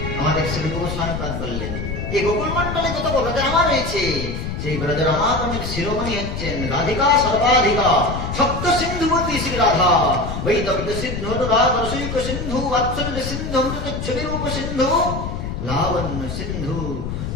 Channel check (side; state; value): left; noise; rumble, 5 dB below the sound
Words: আমাদের শ্রী গোস্বামীপাদ বললেন এই গোকুল মন্ডলে যত ব্রজরামা রয়েছে, সেই ব্রজরামাগণের শিরোমণি হচ্ছেন রাধিকা সর্বাধিকা সপ্ত সিন্ধুবতী শ্রী রাধা। বৈদব্য সিন্ধু অনুরাগ রসিক সিন্ধু বাৎসল্য সিন্ধু অমৃত ছবিরূপ সিন্ধু লাবণ্য সিন্ধু